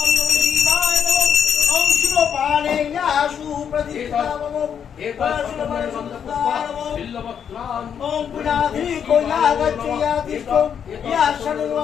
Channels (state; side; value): quieter; right; 8.0 dB